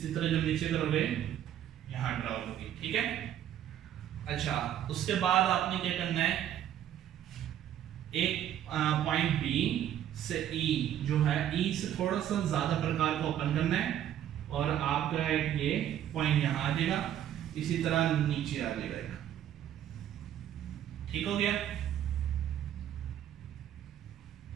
तरह जब नीचे करोगे यहाँ ड्रा होगी, ठीक है। अच्छा उसके बाद आपने क्या करना है, एक पॉइंट बी से ई जो है, ई से थोड़ा सा ज्यादा प्रकार को ओपन करना है और आपका एक ये पॉइंट यहाँ आ जाएगा, इसी तरह नीचे आ जाएगा, ठीक हो गया।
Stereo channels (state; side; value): quieter; left; 10.9 dB